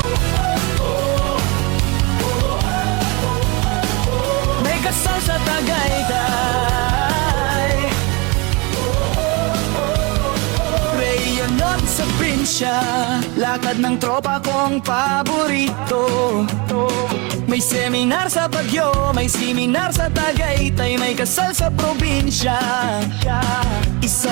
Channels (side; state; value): left; quieter; 28.3 dB